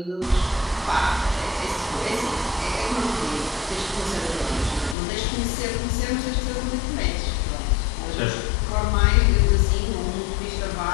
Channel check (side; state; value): right; drops out; at 5.0 s